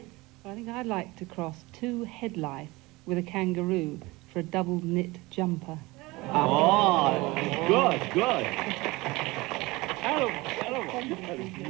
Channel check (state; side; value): quieter; left; 22.0 dB